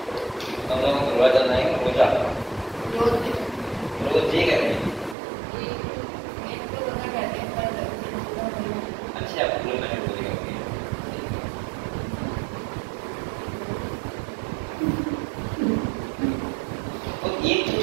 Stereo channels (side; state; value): left; drops out; at 5.2 s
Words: हम लोग रोज जाना है, रोज ये कहते हैं। अच्छा पूरे मैंने बोलेगा तो